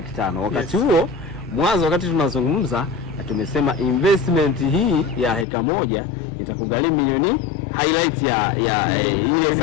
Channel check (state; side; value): drops out; right; at 5.5 s